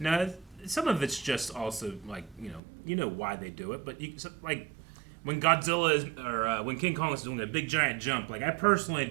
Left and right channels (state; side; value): drops out; left; at 2.6 s